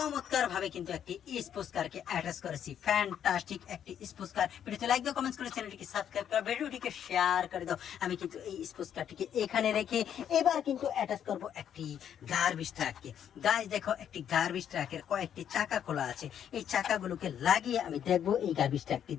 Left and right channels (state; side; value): quieter; right; 9.3 dB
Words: ভাবে কিন্তু একটি স্পোর্টস কারকে অ্যাটাচ করেছি। ফ্যান্টাস্টিক একটি স্পোর্টস কার। ভিডিওতে লাইক দাও, কমেন্টস করে চ্যানেলটিকে সাবস্ক্রাইব করো, ভিডিওটিকে শেয়ার করে দাও। আমি কিন্তু এই স্পোর্টস কারটিকে এখানে রেখে এবার কিন্তু অ্যাটাচ করব একটি গার্বেজ ট্রাককে। গাইস দেখো, একটি গার্বেজ ট্রাকের কয়েকটি চাকা খোলা আছে। এই চাকাগুলোকে লাগিয়ে আমি দেখবো এই গার্বেজ ট্রাকটি